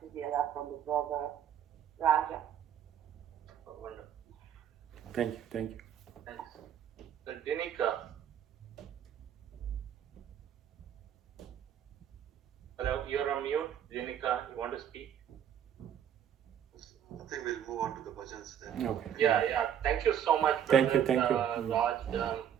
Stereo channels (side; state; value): left; quieter; 9.3 dB